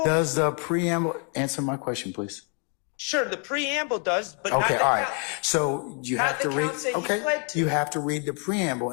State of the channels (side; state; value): right; quieter; 38.9 dB